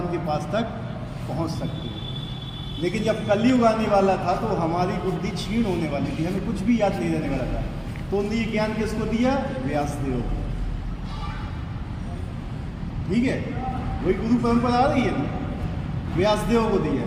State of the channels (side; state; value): both; identical; correlation 1.00